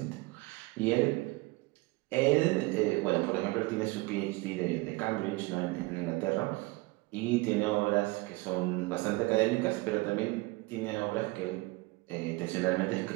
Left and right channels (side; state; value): left; quieter; 23.5 dB